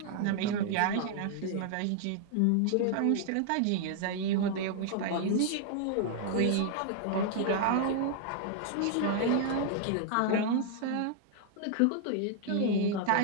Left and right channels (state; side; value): different; both; correlation 0.00